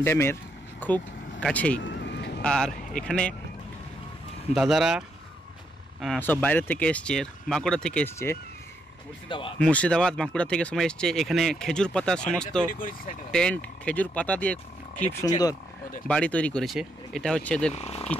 ড্যামের খুব কাছেই। আর এখানে দাদারা সব বাইরে থেকে এসছে, বাঁকুড়া থেকে এসছে, মুর্শিদাবাদ বাঁকুড়া থেকে সময় এসছে। এখানে খেজুর পাতার সমস্ত টেন্ট খেজুর পাতা দিয়ে খুব সুন্দর বাড়ি তৈরি করেছে। এটা হচ্ছে এদের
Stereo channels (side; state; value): both; normal; correlation 0.78